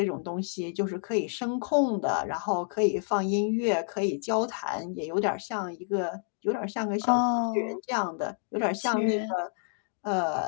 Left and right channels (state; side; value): silent; right; digital silence